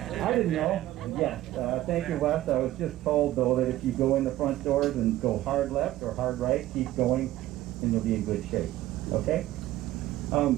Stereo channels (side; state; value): left; quieter; 15.2 dB